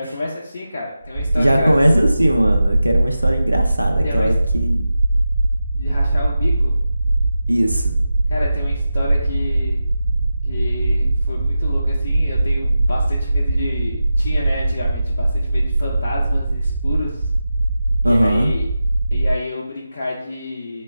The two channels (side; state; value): both; inverted; correlation -0.92